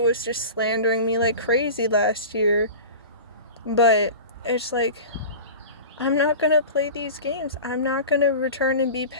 was just slandering me like crazy last year. But it's like, I'm not going to play these games. I'm not going to return and be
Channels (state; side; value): inverted; both; correlation -0.34